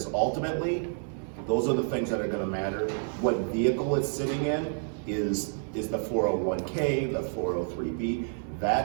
ultimately, those are the things that are gonna matter. What vehicle it's sitting in is the 401k, the 403b.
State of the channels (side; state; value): left; silent; 58 dB below the other